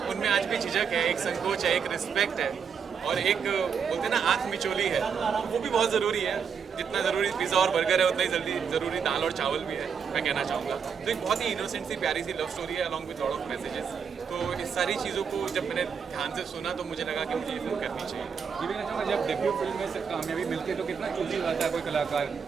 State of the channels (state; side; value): quieter; left; 6.6 dB